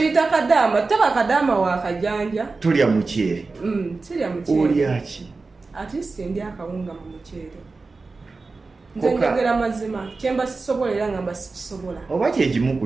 kadaama taba kadaama wakajanja tulya muceere sirya muceere olyaki ate sindi akawunga mu muceere nze njogera mazima kyemba sisobola era ngamba sikisobola oba kyekimu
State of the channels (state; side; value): quieter; left; 3.9 dB